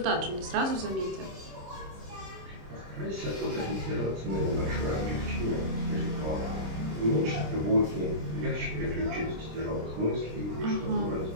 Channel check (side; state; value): left; late; 26 ms